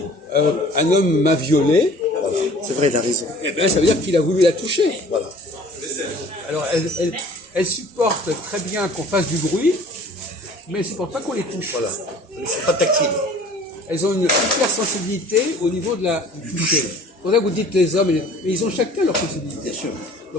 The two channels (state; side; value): normal; both; correlation 0.49